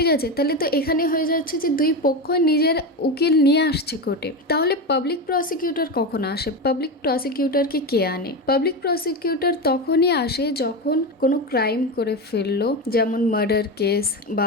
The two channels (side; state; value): both; normal; correlation 0.18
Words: আছে, তাহলে তো এখানে হয়ে যাচ্ছে যে দুই পক্ষ নিজের উকিল নিয়ে আসছে কোর্টে। তাহলে পাবলিক প্রসিকিউটর কখন আসে? পাবলিক প্রসিকিউটরকে কে আনে? পাবলিক প্রসিকিউটর তখনই আসে যখন কোনো ক্রাইম করে ফেললো, যেমন মার্ডার কেস